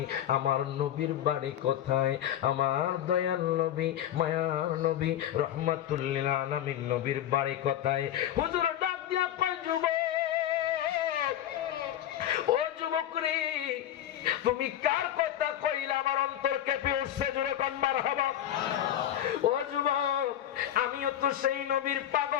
আমার নবীর বাড়ি কোথায়? আমার দয়াল নবী, মায়ার নবী, রহমাতুল লিল আলামিন নবীর বাড়ি কোথায়? হুজুর ডাক দিয়া কয়, যুবক, ও যুবক রে, তুমি কার কথা কইলা আমার অন্তর কেঁপে উঠছে, জোরে কোন মারহাবা। ও যুবক, আমিও তো সেই নবীর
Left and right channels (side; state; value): right; quieter; 11.3 dB